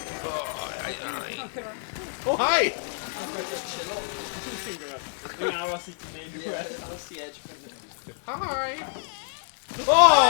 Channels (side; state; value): right; silent; 60 dB below the other